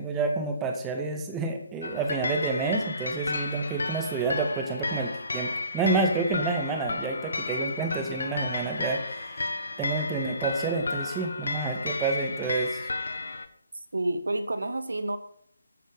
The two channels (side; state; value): both; inverted; correlation -0.48